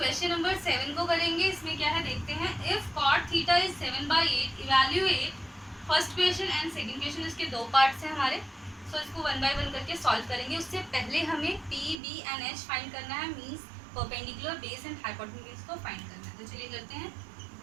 number 7 को करेंगे। इसमें क्या है देखते हैं। If cot theta is 7/8, evaluate first question and second question. इसके दो पार्ट्स हैं हमारे, सो इसको वन बाय वन करके सॉल्व करेंगे। उससे पहले हमें P B and H find करना है, means perpendicular, base and hypotenuse को फाइंड करना है। तो चलिए करते हैं।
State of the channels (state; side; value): drops out; left; at 12.0 s